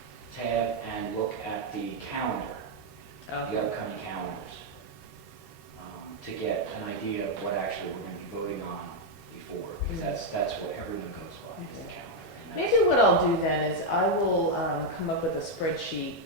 tab, and look at the calendar, the upcoming calendars, to get an idea of what actually we're going to be voting on before, because that's what everyone goes by, is the calendar. And that's- Maybe what I'll do then is I will come up with a spreadsheet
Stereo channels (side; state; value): both; normal; correlation 0.01